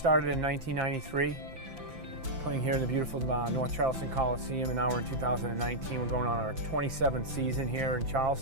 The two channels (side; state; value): left; late; 5.9 ms